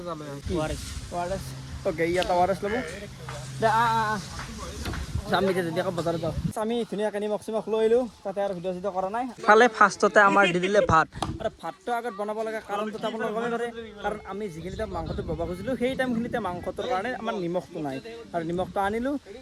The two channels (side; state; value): both; identical; correlation 1.00